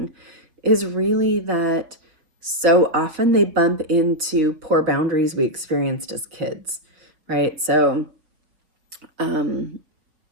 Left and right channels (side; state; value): left; late; 5.7 ms